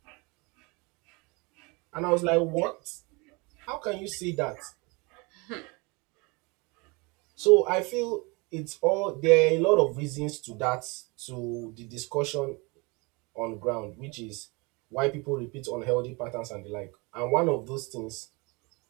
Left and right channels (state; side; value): quieter; left; 28.1 dB